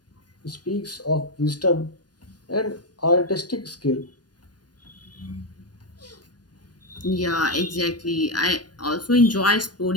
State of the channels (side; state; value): right; late; 0.69 ms